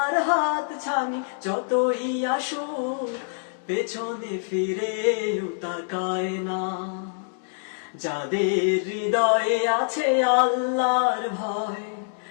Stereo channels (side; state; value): right; silent; digital silence